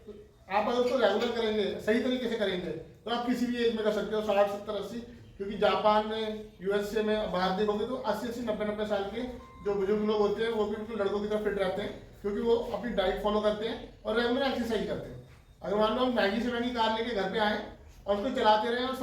आप अगर उसको रेगुलर करेंगे, सही तरीके से करेंगे, तो आप किसी भी एज में कर सकते हो, 60, 70, 80। क्योंकि जापान में, यूएसए में बाहर देखोगे तो 80, 90 साल के जो बुजुर्ग लोग होते हैं वो भी बिल्कुल लड़कों की तरह फिट रहते हैं, क्योंकि वो अपनी डाइट फॉलो करते हैं और रेगुलर एक्सरसाइज करते हैं। अगर मान लो हम महंगी से महंगी कार लेके घर पे आए और उसको चलाते रहें और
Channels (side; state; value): both; identical; correlation 1.00